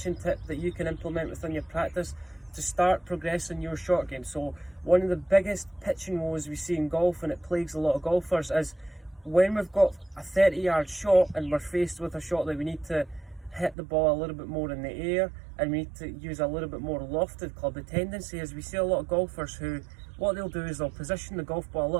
tip that you can implement within your practice to start progressing your short game. So one of the biggest pitching woes we see in golf, and it plagues a lot of golfers, is when we've got a 30-yard shot and we're faced with a shot that we need to hit the ball a little bit more in the air and we need to use a little bit more lofted club. The tendency is we see a lot of golfers who, what they'll do is they'll position the golf ball a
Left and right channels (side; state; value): left; drops out; at 13.8 s